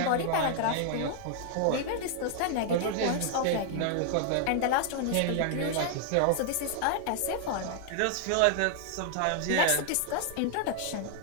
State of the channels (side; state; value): both; different; correlation 0.00